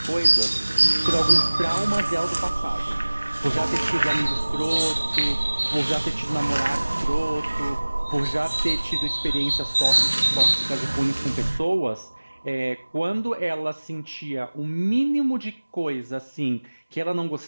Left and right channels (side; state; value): both; inverted; correlation -1.00